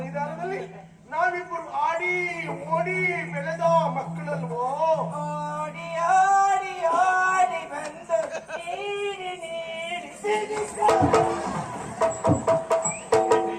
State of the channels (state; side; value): identical; both; correlation 1.00